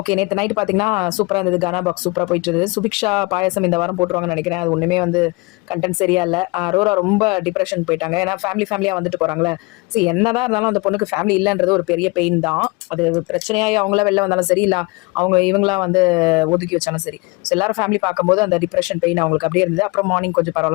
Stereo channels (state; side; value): quieter; right; 26.5 dB